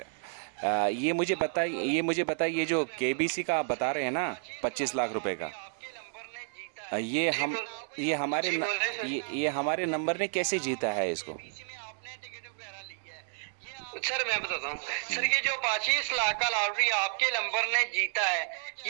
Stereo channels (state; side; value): silent; left; digital silence